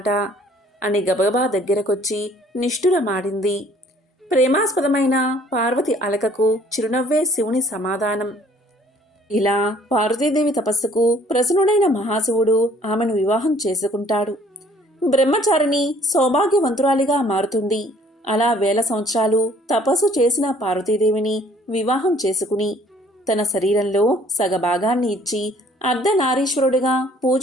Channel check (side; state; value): both; normal; correlation 0.58